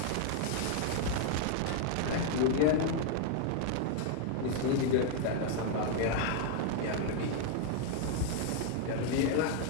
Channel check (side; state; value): both; different; correlation 0.00